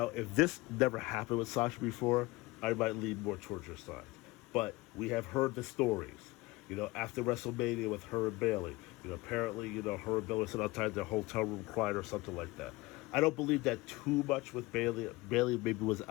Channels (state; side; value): quieter; right; 21.4 dB